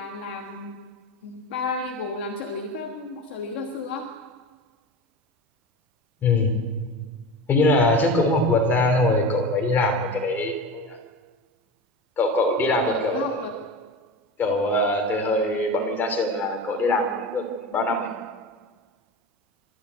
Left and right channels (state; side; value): normal; both; correlation 0.28